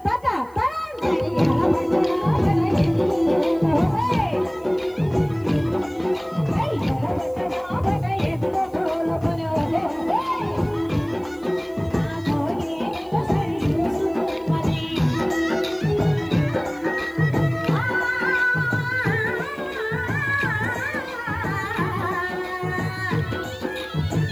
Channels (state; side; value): noise; right; hiss, 30 dB below the sound